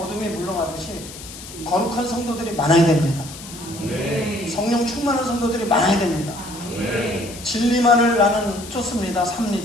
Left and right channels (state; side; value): noise; left; hiss, 14 dB below the sound